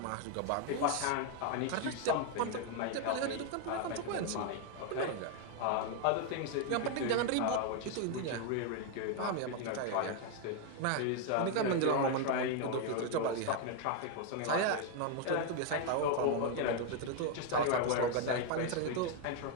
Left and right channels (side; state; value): both; different; correlation 0.01